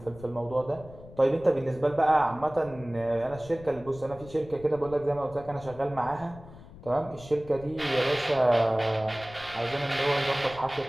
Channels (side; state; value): left; noise; rumble, 18 dB below the sound